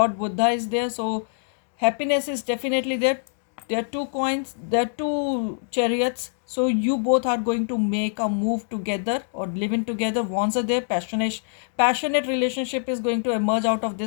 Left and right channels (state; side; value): silent; right; digital silence